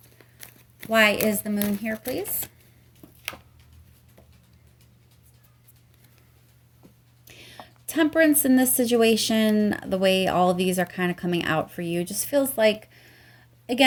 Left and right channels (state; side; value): identical; both; correlation 1.00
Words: Why is the Moon here, please? Temperance in this situation, the way all of these are kind of coming out for you, just feels like,